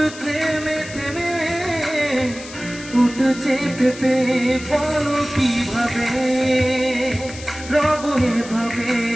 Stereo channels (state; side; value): noise; left; hiss, 15 dB below the sound